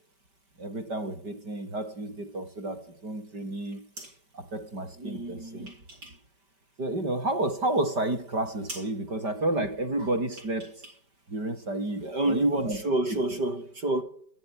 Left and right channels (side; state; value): left; late; 5.1 ms